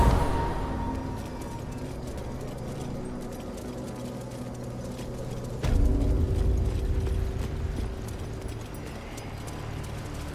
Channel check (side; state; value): both; identical; correlation 1.00